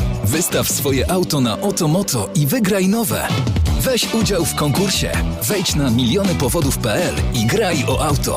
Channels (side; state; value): both; identical; correlation 1.00